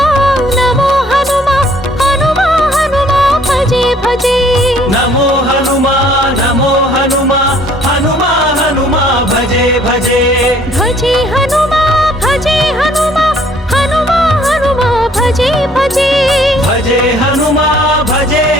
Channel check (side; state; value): both; normal; correlation 0.59